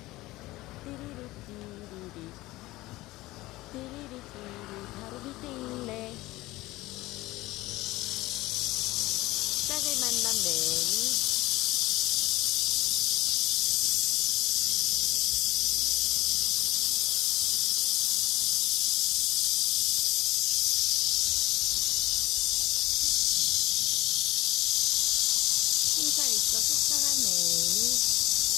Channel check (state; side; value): quieter; right; 18.7 dB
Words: 띠리리 띠리리 띠리리 띠리 바로 밑에 있네. 짝을 만난 매미.